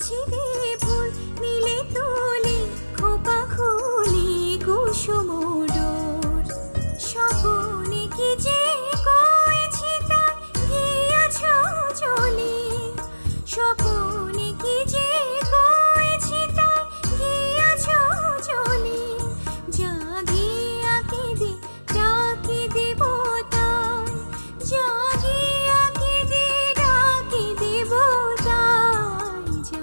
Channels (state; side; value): inverted; both; correlation -1.00